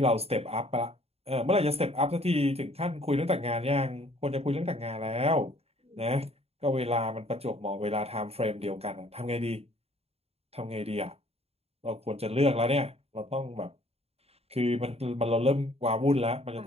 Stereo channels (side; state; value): left; late; 0.29 ms